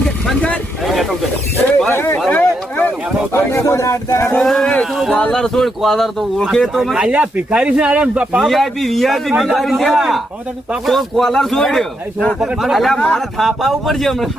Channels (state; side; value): normal; both; correlation 0.80